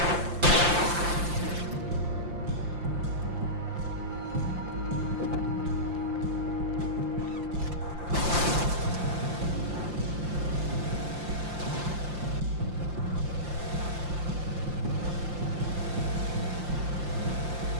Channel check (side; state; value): left; late; 5.7 ms